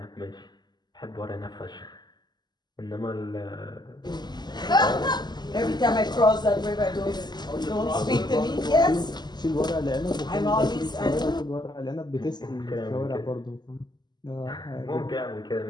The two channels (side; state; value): right; late; 0.21 ms